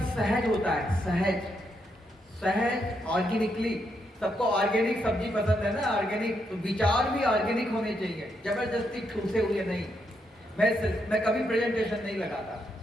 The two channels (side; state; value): both; normal; correlation 0.79